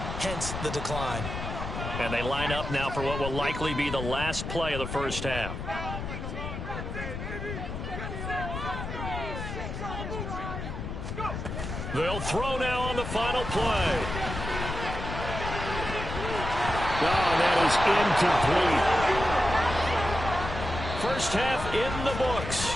hence the decline. And they line up now for what will likely be the last play of the first half. They'll throw now on the final play. Oh, that is incomplete. First half in the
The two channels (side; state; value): left; noise; rumble, 6 dB below the sound